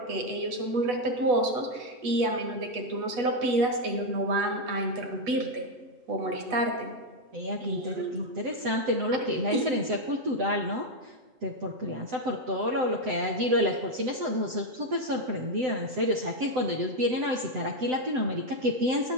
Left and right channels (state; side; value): late; left; 7.9 ms